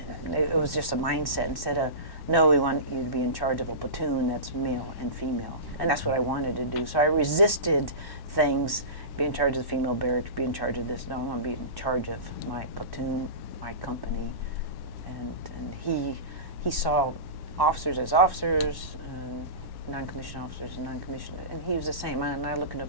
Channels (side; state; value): right; late; 1.1 ms